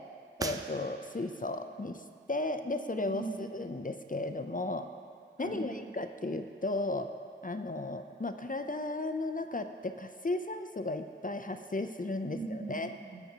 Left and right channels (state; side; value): normal; both; correlation 0.42